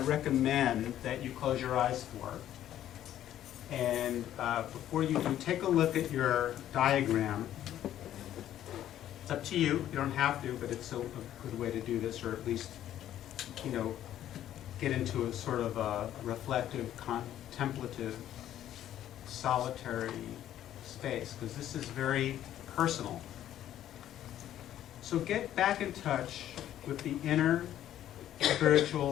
that you close your eyes for. And before you do, take a look at your diagram. It's up to you. You don't have to, but it's a good way to do this, or at least, you know, get into a sort of a reflective, contemplative, solitary space, because this is very personal. So get back in touch with the inner,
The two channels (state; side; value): quieter; right; 11.8 dB